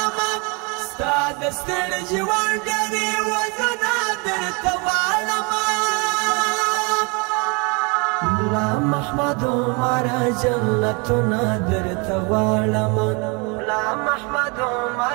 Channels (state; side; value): quieter; left; 31.2 dB